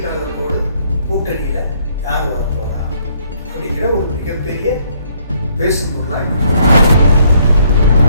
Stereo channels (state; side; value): inverted; both; correlation -0.67